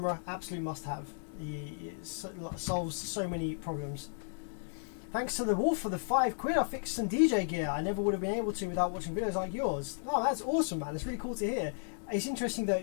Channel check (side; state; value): right; silent; digital silence